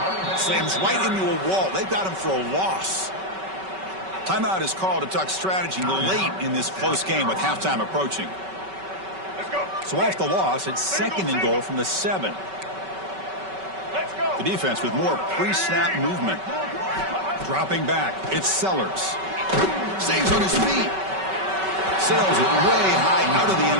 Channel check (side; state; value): left; late; 5.3 ms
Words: Slams right into a wall. They've got him for a loss. Timeout is called to talk strategy late in this close game with halftime approaching. So off the loss, it's 2nd and goal from the 7. The defense with more pre-snap movement. Dropping back, it's Sellers. Stays on his feet. Sails it way high out of the